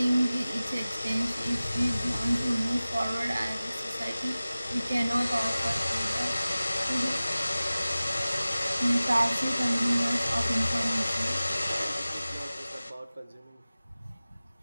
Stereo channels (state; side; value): inverted; both; correlation -0.97